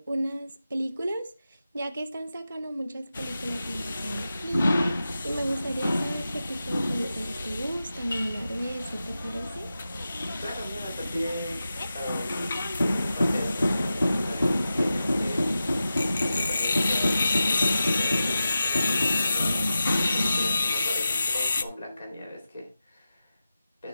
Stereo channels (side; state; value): both; inverted; correlation -0.93